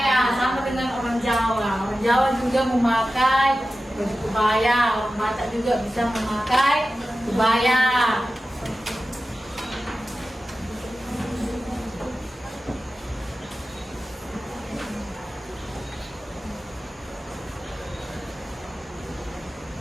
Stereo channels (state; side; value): normal; both; correlation 0.94